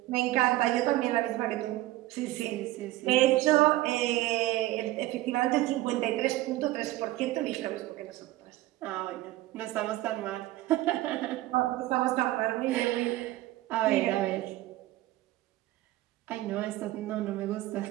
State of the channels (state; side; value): quieter; left; 16.9 dB